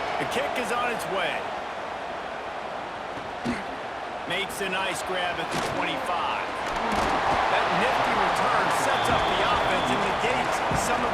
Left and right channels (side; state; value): both; identical; correlation 1.00